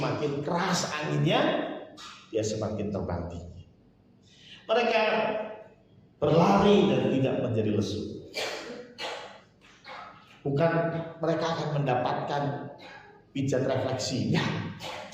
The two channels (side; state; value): both; identical; correlation 1.00